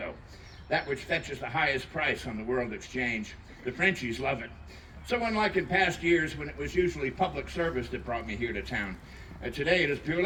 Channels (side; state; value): both; identical; correlation 1.00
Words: that which fetches the highest price on the world exchange. The Frenchies love it. So unlike in past years when it was usually public service that brought me here to town, today it is